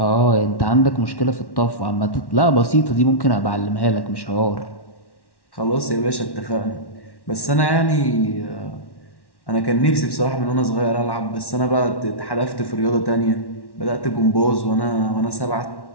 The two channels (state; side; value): late; right; 1.1 ms